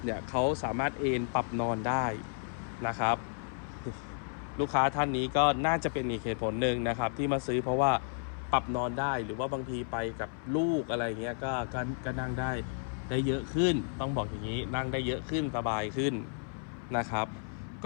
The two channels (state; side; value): silent; right; 56 dB below the other